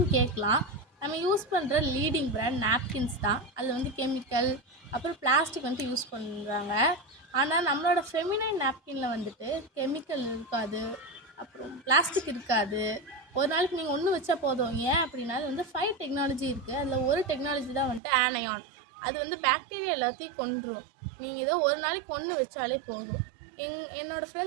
கேட்கலாம். நம்ம யூஸ் பண்ணுற லீடிங் பிராண்ட் நாப்கின்ஸ் தான். அதில் வந்து கெமிக்கல் அப்புறம் பிளாஸ்டிக் வந்துட்டு யூஸ் பண்ணுறாங்க. ஆனால் நம்மளோட ஃபெமினைன் நாப்கினில் வந்துட்டு கெமிக்கல் இருக்காது, அப்புறம் பிளாஸ்டிக் இருக்காது. ஒரு நாளைக்கு நீங்கள் ஒன்று வச்சா போதும். ஏன் அப்படின்னா அது வந்து 5 டெக்னாலஜி இருக்குது. அதில் ஒரு டெக்னாலஜி தான் வந்துட்டு ஆனையான். அது வந்து பாக்டீரியா எல்லாத்தையும் கொன்றும். நீங்கள் இதை ஒரு நாளைக்கு ஒன்று வச்சாலே போதும். என்னோடய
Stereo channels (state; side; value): drops out; left; at 18.0 s